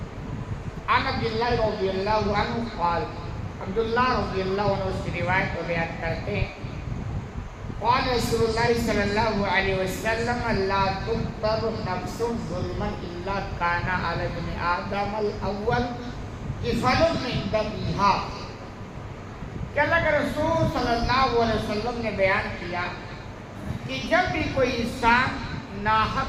عن عبداللہ رضی اللہ عنہ قال, عبداللہ رضی اللہ عنہ اس کی روایت کو بیان کرتے ہیں, قال رسول اللہ صلی اللہ علیہ وسلم لا تقتل نفس ظلما الا كان على ابن آدم الاول كفل من دمها. کہ اللہ کے رسول صلی اللہ علیہ وسلم نے بیان کیا کہ جب بھی کوئی انسان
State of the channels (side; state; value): both; identical; correlation 1.00